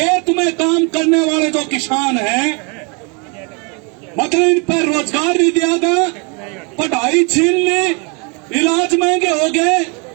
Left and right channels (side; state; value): left; quieter; 33.0 dB